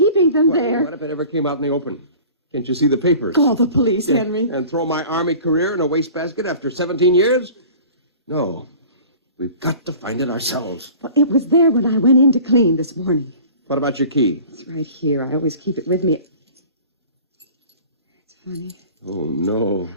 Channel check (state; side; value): inverted; both; correlation -0.44